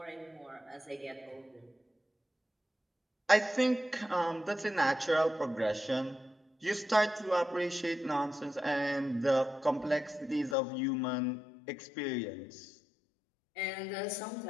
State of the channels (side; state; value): right; drops out; at 10.6 s